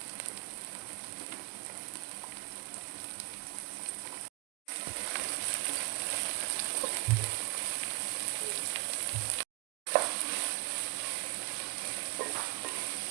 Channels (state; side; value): quieter; left; 26.6 dB